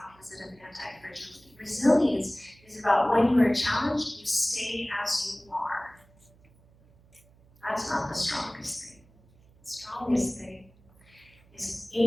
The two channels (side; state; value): right; noise; hum, 29 dB below the sound